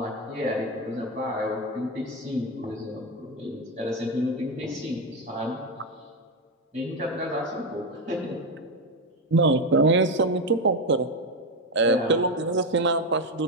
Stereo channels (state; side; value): normal; both; correlation 0.11